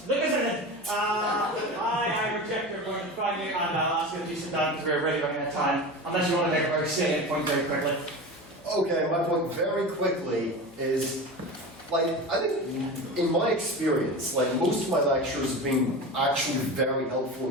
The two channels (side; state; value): left; noise; hum, 26 dB below the sound